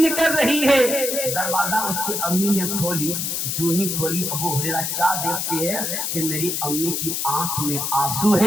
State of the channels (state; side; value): noise; left; hiss, 1 dB below the sound